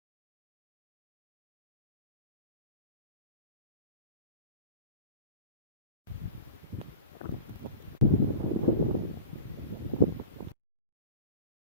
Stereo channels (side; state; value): both; inverted; correlation -0.36